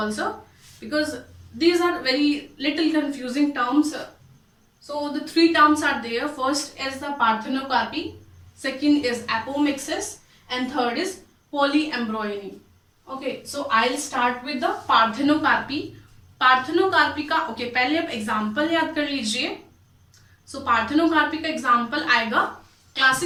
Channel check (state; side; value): identical; both; correlation 1.00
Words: because these are very little confusing terms. So the 3 terms are there. First is the parthenocarpy, second is apomixis, and third is polyembryony. Okay, so I'll start with the parthenocarpy. Parthenocarpy का okay पहले आप example याद कर लीजिए. सो parthenocarpy का example आएगा,